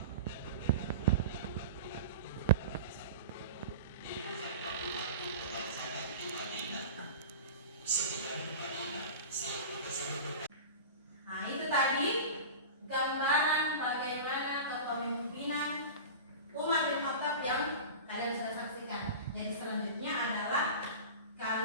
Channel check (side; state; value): both; inverted; correlation -0.33